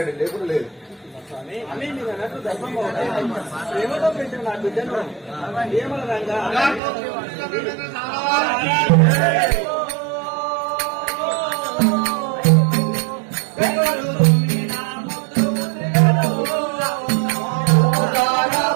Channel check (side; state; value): left; drops out; at 6.8 s